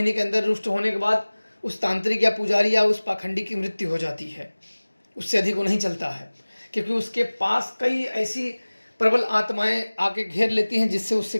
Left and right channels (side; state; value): both; inverted; correlation -1.00